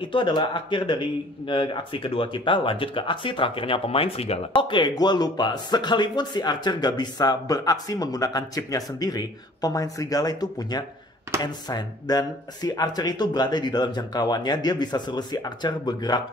adalah akhir dari aksi kedua kita. Lanjut ke aksi terakhirnya pemain serigala. Oke, gue lupa. Sekalipun si Archer gak bisa beraksi menggunakan chipnya sendiri, pemain serigala itu punya ensign. Dan si Archer itu berada di dalam jangkauannya. Dia bisa suruh si Archer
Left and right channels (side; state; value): both; normal; correlation 0.52